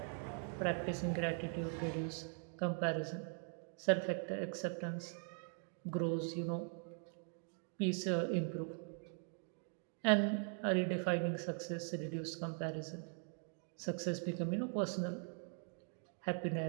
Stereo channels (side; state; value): left; silent; 50 dB below the other